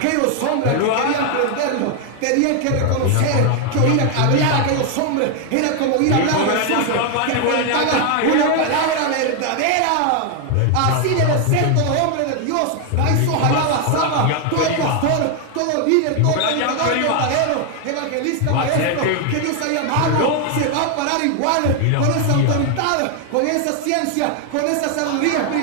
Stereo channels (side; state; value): both; different; correlation 0.01